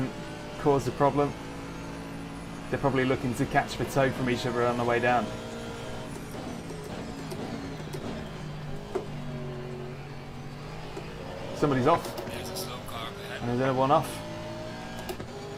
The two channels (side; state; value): both; identical; correlation 1.00